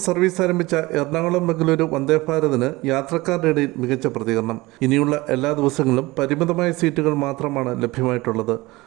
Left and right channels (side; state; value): left; quieter; 21.0 dB